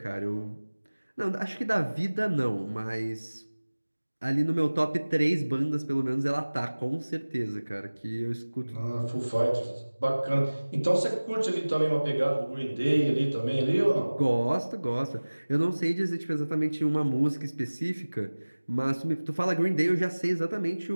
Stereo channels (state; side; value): inverted; both; correlation -1.00